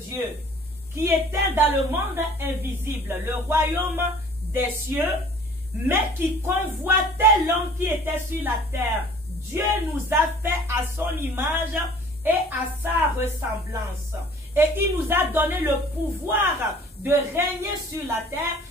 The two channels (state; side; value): normal; both; correlation 0.50